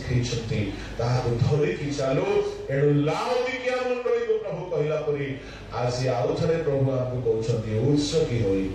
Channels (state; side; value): identical; both; correlation 1.00